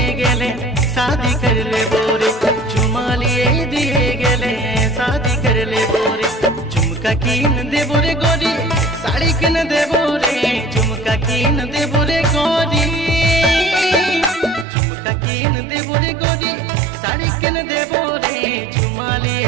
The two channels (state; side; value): drops out; left; at 14.7 s